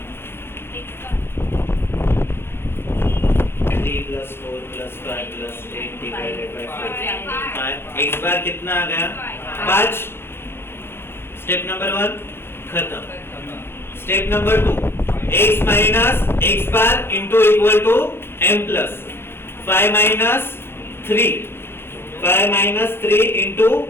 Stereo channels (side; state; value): right; late; 0.11 ms